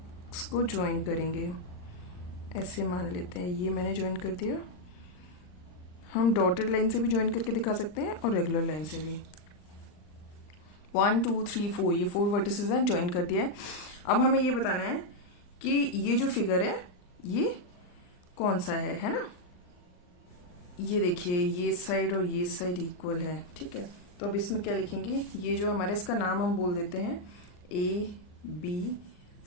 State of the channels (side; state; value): right; late; 39 ms